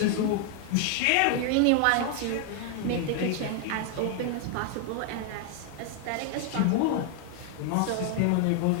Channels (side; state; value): both; different; correlation 0.00